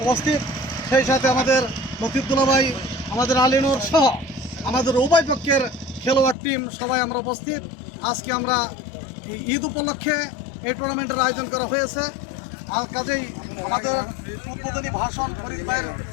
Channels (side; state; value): right; drops out; at 6.4 s